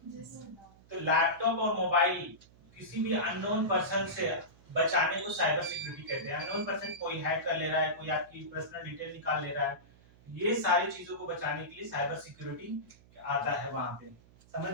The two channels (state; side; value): noise; right; hum, 26 dB below the sound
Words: तो लैपटॉप और मोबाइल किसी भी अननोन पर्सन से बचाने को साइबर सिक्योरिटी कहते हैं। अननोन पर्सन कोई हैक कर ले रहा है, कोई आपकी पर्सनल डिटेल निकाल ले रहा है, ये सारी चीजों को बचाने के लिए साइबर सिक्योरिटी आता है वहां पे। समझ